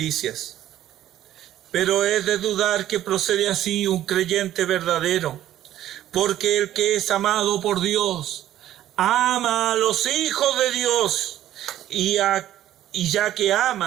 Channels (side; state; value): left; quieter; 12.6 dB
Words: Pero es de dudar que procede así un creyente verdadero, porque el que es amado por Dios, ama a los hijos de Dios, y ya que